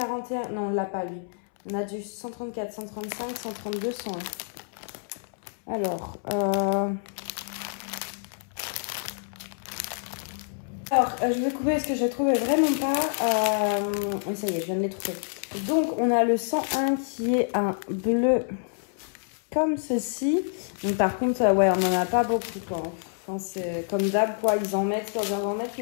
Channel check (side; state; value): right; silent; 60 dB below the other